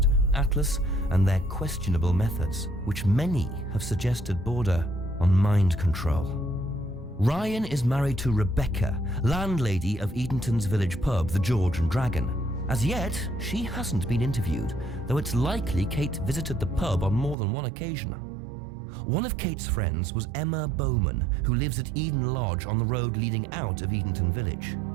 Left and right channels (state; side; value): drops out; left; at 17.4 s